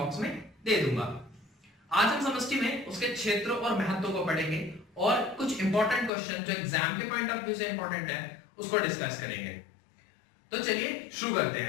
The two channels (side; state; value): right; drops out; at 6.1 s